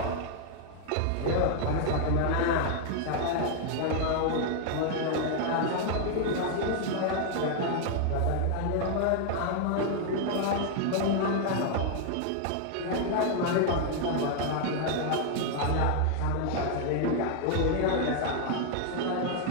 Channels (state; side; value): different; both; correlation 0.00